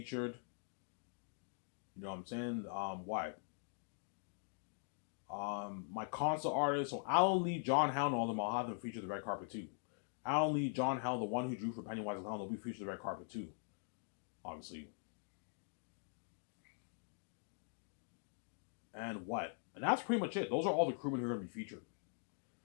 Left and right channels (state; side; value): silent; right; digital silence